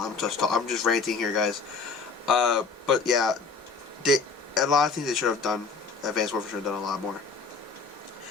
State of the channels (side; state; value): right; quieter; 4.6 dB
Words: just ranting here, guys. But yeah, a lot of things they should have done. Advanced Warfare should have done a lot more,